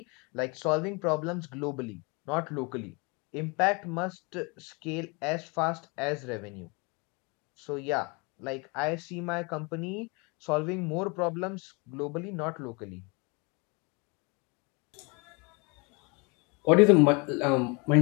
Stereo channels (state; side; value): quieter; right; 29.8 dB